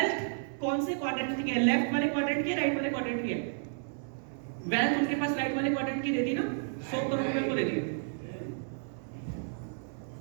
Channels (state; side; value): silent; left; 57 dB below the other